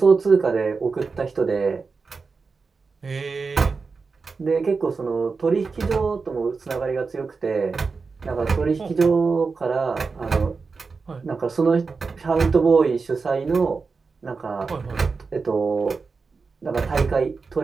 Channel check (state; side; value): quieter; left; 4.6 dB